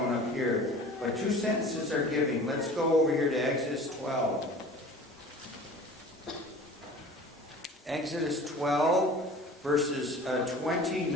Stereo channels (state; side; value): normal; both; correlation 0.42